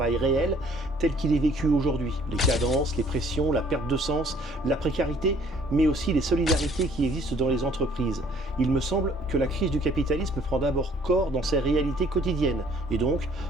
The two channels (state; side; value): normal; both; correlation 0.58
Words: réel tel qu'il est vécu aujourd'hui. Les cadences, les pressions, la perte de sens, la précarité, mais aussi les solidarités qui existent dans les entreprises. Il me semble que la crise du capitalisme prend d'abord corps dans ses réalités quotidiennes. Et donc,